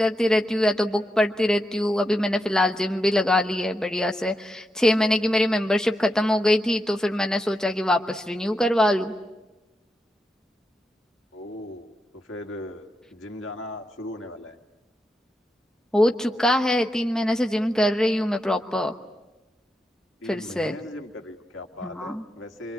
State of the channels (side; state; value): both; normal; correlation 0.86